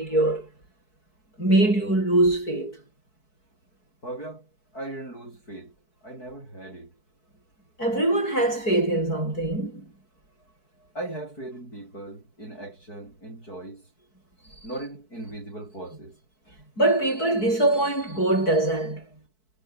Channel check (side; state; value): right; late; 4.6 ms